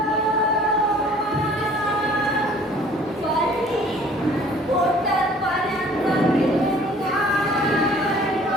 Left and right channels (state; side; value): normal; both; correlation 0.53